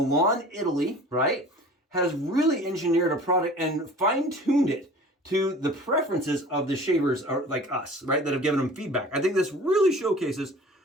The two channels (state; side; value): normal; both; correlation 0.43